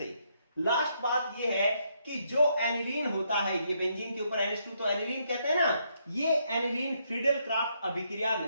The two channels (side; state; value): both; inverted; correlation -0.75